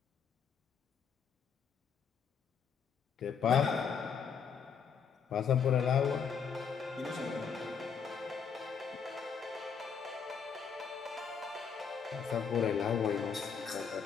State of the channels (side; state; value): right; quieter; 6.6 dB